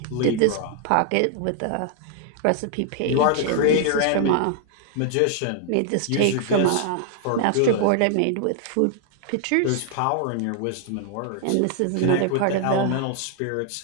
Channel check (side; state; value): both; different; correlation 0.00